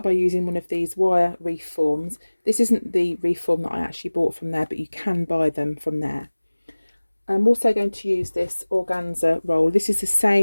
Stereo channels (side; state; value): both; inverted; correlation -1.00